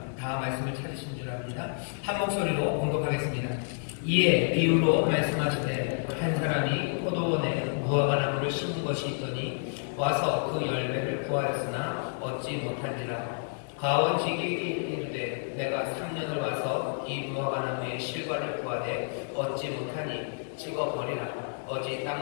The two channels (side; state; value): right; silent; 58 dB below the other